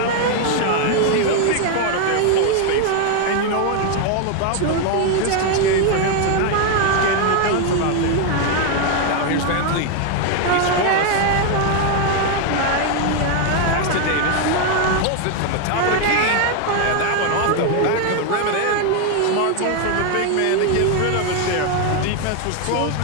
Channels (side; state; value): both; different; correlation 0.01